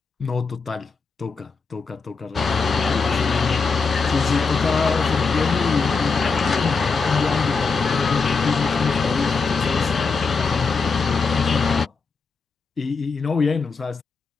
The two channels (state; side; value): quieter; right; 4.8 dB